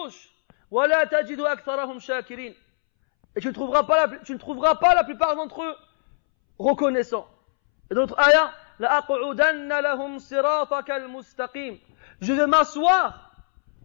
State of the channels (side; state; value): right; silent; 64 dB below the other